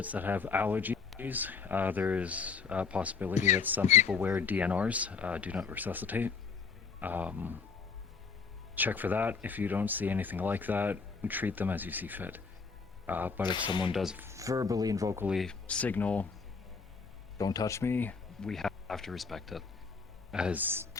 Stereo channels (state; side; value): quieter; right; 5.3 dB